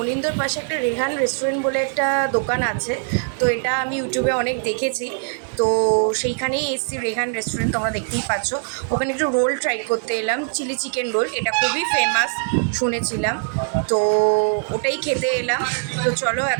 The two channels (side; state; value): left; silent; 64 dB below the other